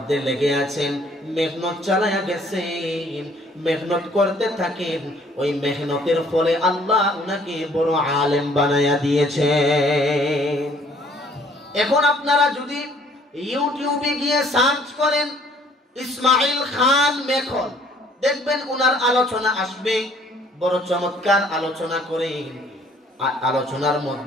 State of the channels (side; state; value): both; normal; correlation 0.59